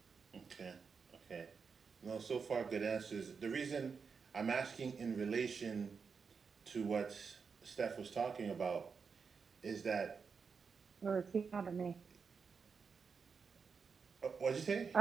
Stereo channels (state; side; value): quieter; left; 5.6 dB